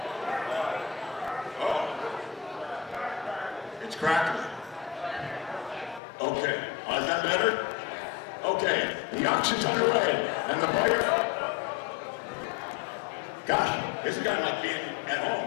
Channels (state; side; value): drops out; right; at 6.0 s